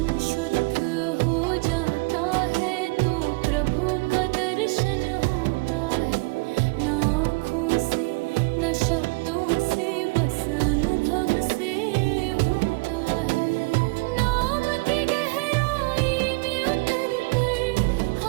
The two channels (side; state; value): left; quieter; 28.2 dB